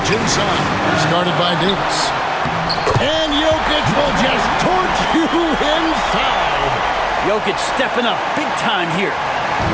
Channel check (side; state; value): both; identical; correlation 1.00